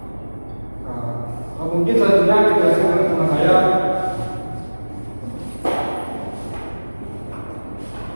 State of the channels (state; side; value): inverted; both; correlation -1.00